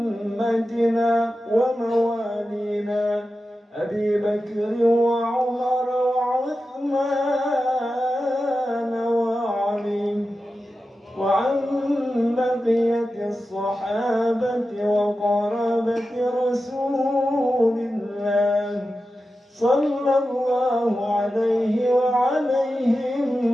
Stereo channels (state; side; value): normal; both; correlation 0.92